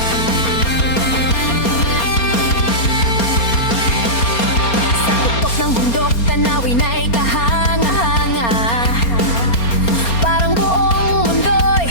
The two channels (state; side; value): late; right; 4.3 ms